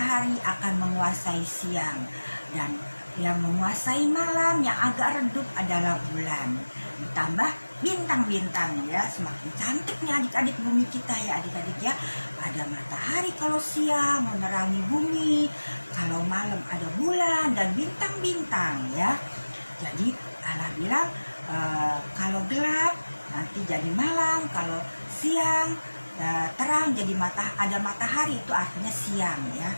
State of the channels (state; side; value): inverted; both; correlation -1.00